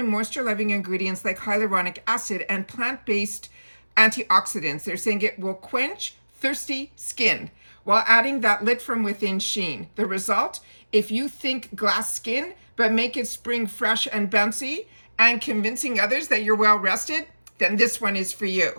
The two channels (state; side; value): inverted; both; correlation -1.00